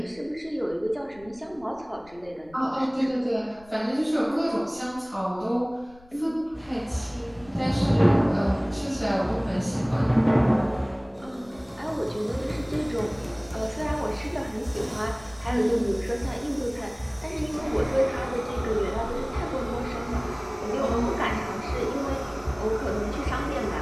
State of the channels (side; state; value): left; noise; rumble, 24 dB below the sound